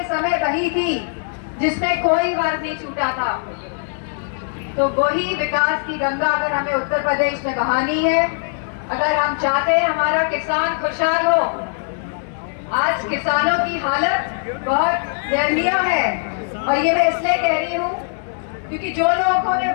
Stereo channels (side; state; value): right; silent; 65 dB below the other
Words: समय बही थी, जिसमें कोई वर्ग नहीं छूटा था, तो वही विकास की गंगा अगर हमें उत्तर प्रदेश में बहानी है, अगर हम चाहते हैं हमारा किसान खुशहाल हो। आज किसानों की हालत बहुत दयनीय है, और ये मैं इसलिए कह रही हूँ क्योंकि जो लोगों ने